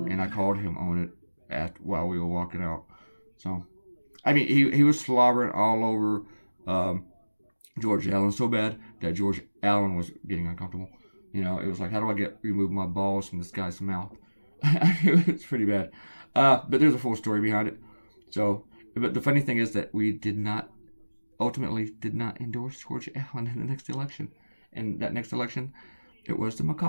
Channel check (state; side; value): inverted; both; correlation -1.00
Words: I called him on it while we were walking out. So, he was slobbering all over George Allen so bad that George Allen was getting uncomfortable. It was like, how do I remove my balls from this guy's mouth? It's pretty bad. But there's a full story behind it. So, but the funny thing is that we ultimately did not endorse George Allen in the next election. And that next election, it was the